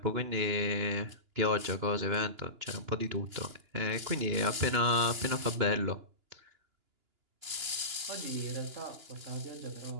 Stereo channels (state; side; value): late; left; 2.9 ms